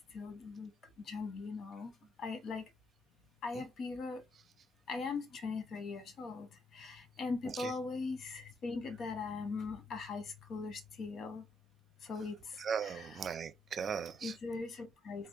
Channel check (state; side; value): normal; both; correlation 0.76